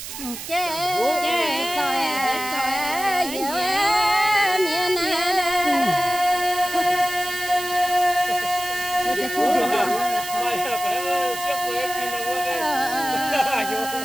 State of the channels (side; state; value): right; noise; hiss, 9 dB below the sound